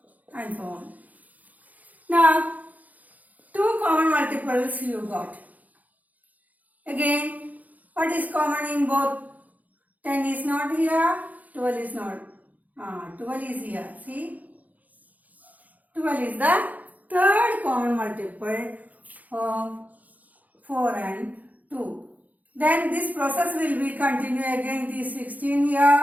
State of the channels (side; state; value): left; late; 0.078 ms